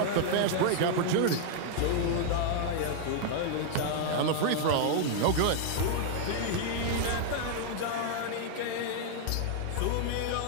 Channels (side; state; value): both; different; correlation 0.00